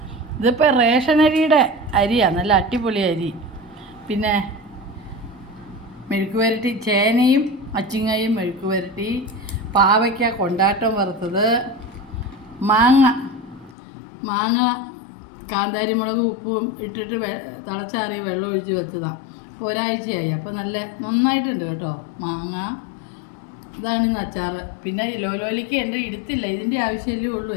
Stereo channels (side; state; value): right; drops out; at 13.8 s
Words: ഇതിപ്പോൾ റേഷനരിയുടെ അരിയാണ്, നല്ല അടിപൊളി അരി. പിന്നെ മെഴുക്ക് പുരട്ടി, ചേനയും അച്ചിങ്ങയും മെഴുക്ക് പുരട്ടി, പാവയ്ക്ക കൊണ്ടാട്ടം വറുത്തത്, മാങ്ങ കാന്താരി മുളക് ഉപ്പും ഇട്ടിട്ട് തിളച്ചാറിയ വെള്ളം ഒഴിച്ച് വെച്ചതാണ്. അപ്പോൾ ഒരാഴ്ചയായി. അപ്പോൾ നന്നായിട്ടുണ്ട് കേട്ടോ മാങ്ങ. ഇതാണ് ഇന്ന് അച്ചാറ്. പിന്നെ ലോലിക്ക് ഉണ്ട്, എടുത്തില്ല, ഇതിൻ്റെ ആവശ്യമല്ലേ ഉള്ളൂ,